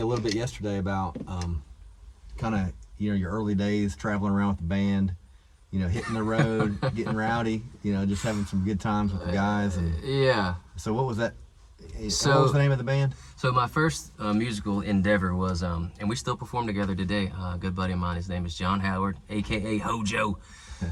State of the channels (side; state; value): both; identical; correlation 1.00